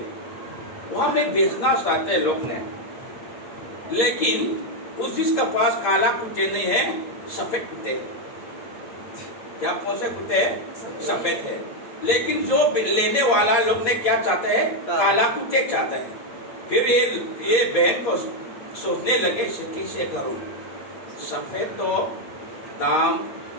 वहां में बेचना चाहते हैं लोग ने, लेकिन उस जिसका पास काला कुत्ते नहीं है, सफेद कुत्ते। क्या कौन से कुत्ते? सफेद है। लेकिन जो लेने वाला लोग ने क्या चाहते हैं? काला कुत्ते चाहते हैं। फिर ये बहन को सोचने लगे, कैसे करूं? सफेद तो दाम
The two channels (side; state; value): right; late; 9.1 ms